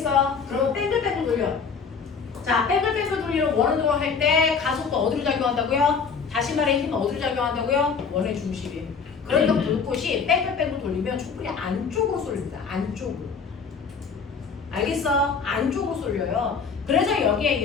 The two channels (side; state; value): right; quieter; 5.6 dB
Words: 그러면 뺑글뺑글 돌려. 자, 뺑글뺑글 돌리는 원으로 할 때 가속도 어디로 작용한다고요? 다시 말해 힘은 어디로 작용한다고요? 원의 중심이. 그러니까 불꽃이 뺑글뺑글 돌리면 촛불이 안쪽으로 쏠립니다. 안쪽으로. 알겠어? 안쪽으로 쏠려요. 그래서 여기에